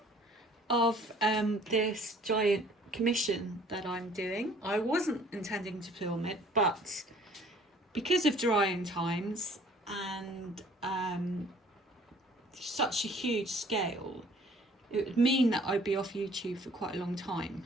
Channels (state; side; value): normal; both; correlation 0.55